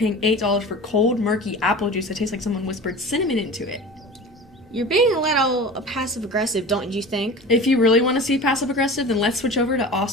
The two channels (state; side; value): normal; both; correlation 0.36